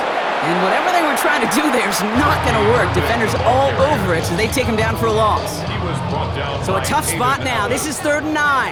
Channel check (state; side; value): identical; both; correlation 1.00